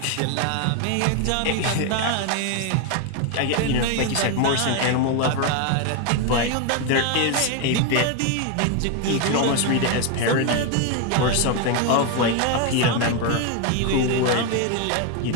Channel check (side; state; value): both; different; correlation 0.01